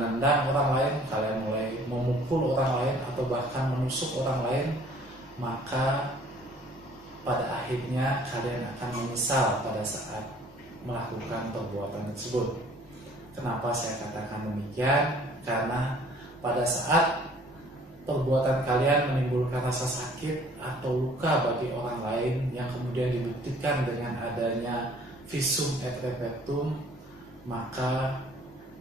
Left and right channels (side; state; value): both; normal; correlation 0.55